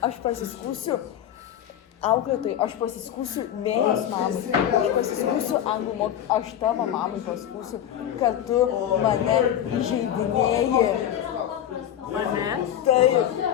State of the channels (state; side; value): quieter; right; 10.7 dB